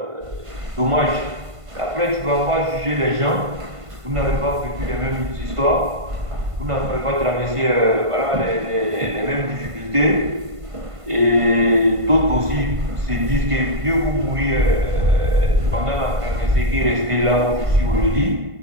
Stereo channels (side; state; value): left; late; 1.5 ms